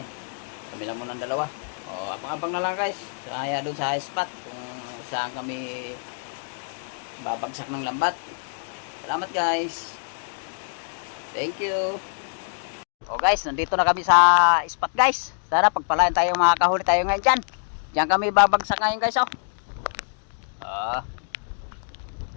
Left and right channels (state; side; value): silent; right; digital silence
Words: Kami lang muna ng dalawa. Abang-abang na lang guys. Kaya doon sa spot kung saan kami babagsak ng lambat. Salamat guys. Thank you. Guys, nandito na kami sa spot guys. Sana pagpalain tayo, makakahuli tayo ngayon dyan. Diyan kami babagsak ngayon guys